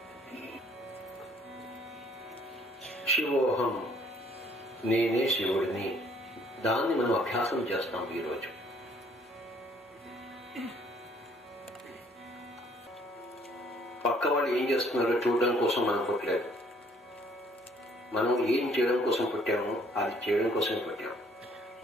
శివోహం, నేనే శివుడిని. దాన్ని మనం అభ్యాసం చేస్తాం ఈరోజు. పక్క వాళ్ళు ఏం చేస్తున్నారో చూడడం కోసం మనం పుట్టలేదు. మనం ఏం చేయడం కోసం పుట్టామో అది చేయడం కోసం పుట్టాము.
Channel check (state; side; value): normal; both; correlation 0.62